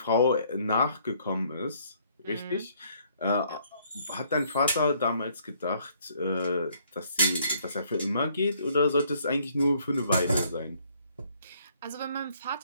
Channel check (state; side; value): inverted; both; correlation -0.65